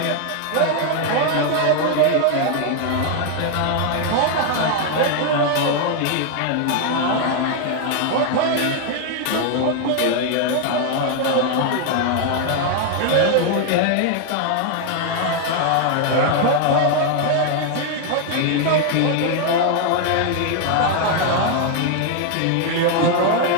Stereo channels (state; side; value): different; both; correlation 0.00